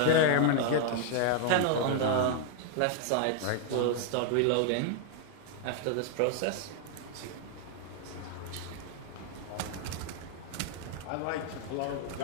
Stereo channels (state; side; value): different; both; correlation 0.00